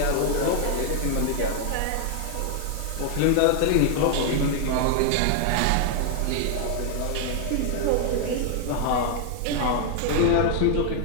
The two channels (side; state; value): both; different; correlation 0.00